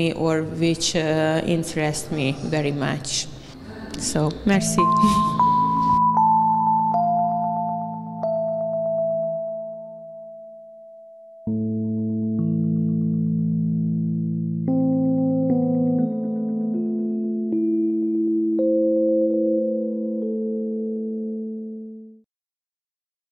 or which interests me very much. So, merci.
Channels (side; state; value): both; identical; correlation 1.00